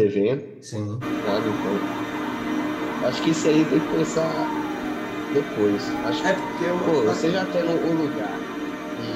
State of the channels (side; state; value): both; identical; correlation 1.00